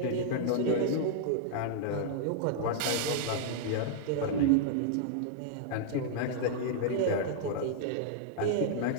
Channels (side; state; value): both; different; correlation -0.01